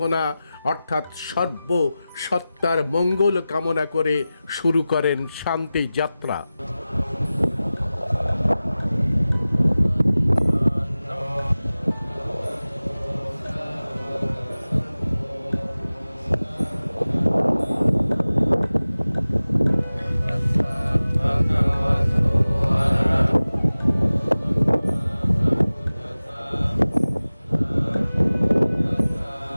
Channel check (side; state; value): both; inverted; correlation -0.96